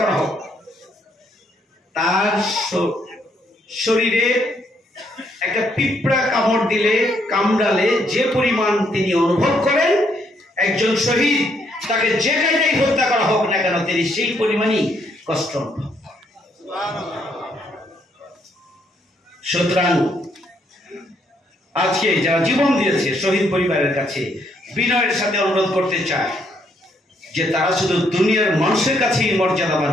করা হোক, তার শরীরে একটা পিঁপড়া কামড় দিলে, কামড়ালে যে পরিমাণ তিনি অনুভব করেন, একজন শহীদ তাকে যে জায়গায় হত্যা করা হোক না কেন তিনি সেই পরিমাণই কষ্ট অনুভব। সুতরাং আজকে যারা জীবন দিয়েছে শহীদ পরিবারের কাছে বিনয়ের সাথে অনুরোধ করতে চায় যে তারা শুধু দুনিয়ার মানুষের কাছেই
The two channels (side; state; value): both; normal; correlation 0.72